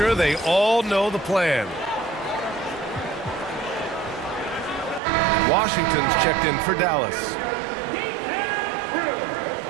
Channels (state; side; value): drops out; left; at 5.0 s